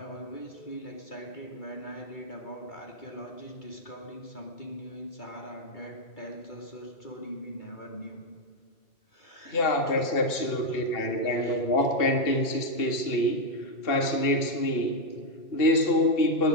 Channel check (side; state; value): right; late; 2.7 ms